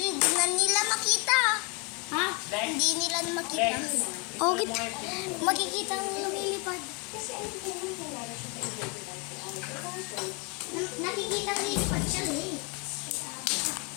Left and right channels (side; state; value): right; quieter; 30.7 dB